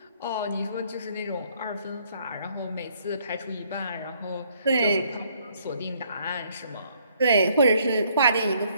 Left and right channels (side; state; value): both; inverted; correlation -0.66